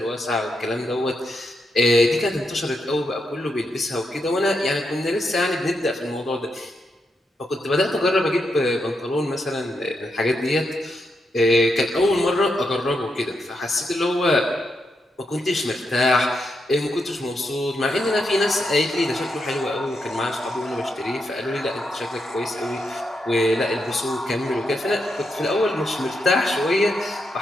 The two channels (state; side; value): normal; both; correlation 0.83